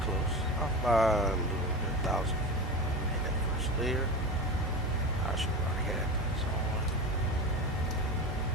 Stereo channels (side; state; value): both; normal; correlation 0.26